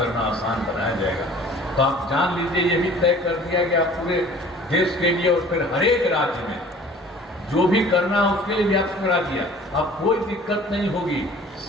आसान बनाया जाएगा। तो आप जान लीजिए, ये भी तय कर दिया गया पूरे देश के लिए, और फिर हर एक राज्य में जो भी करना है उसके लिए भी आपको करा दिया। अब कोई दिक्कत नहीं होगी,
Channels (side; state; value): both; normal; correlation 0.48